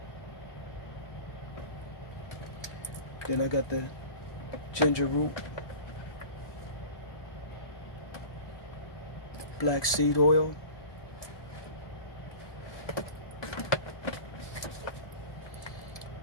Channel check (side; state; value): right; late; 1.2 ms